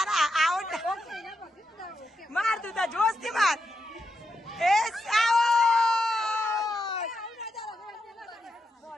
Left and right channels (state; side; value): normal; both; correlation 0.85